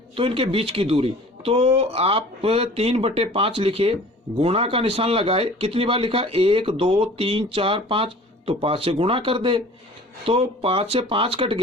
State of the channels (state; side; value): normal; both; correlation 0.46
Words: तो इनके बीच की दूरी, तो आप 3/5 लिखे, गुणा का निशान लगाए। कितनी बार लिखा? 1 2 3 4 5, तो 5 से गुणा कर दे, तो 5 से 5 कट